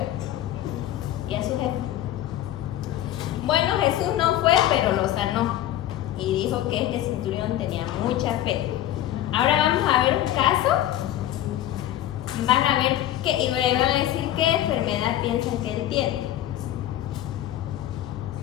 y a su jefe. Bueno, Jesús no fue, pero lo sanó. Y dijo que este centurión tenía mucha fe. Ahora vamos a ver un caso. Van a ver y me van a decir qué enfermedad piensan que él tiene.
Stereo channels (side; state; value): right; quieter; 12.9 dB